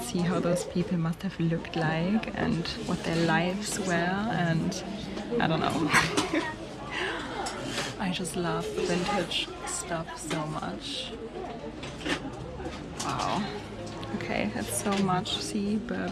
see how those people must have looked like and what their lives were, and I don't know. I just love vintage stuff so much. Wow. Okay, that's so much. See,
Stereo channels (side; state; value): both; identical; correlation 1.00